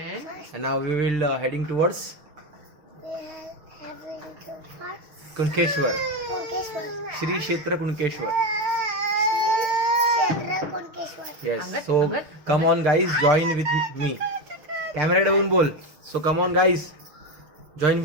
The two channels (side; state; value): left; late; 6.7 ms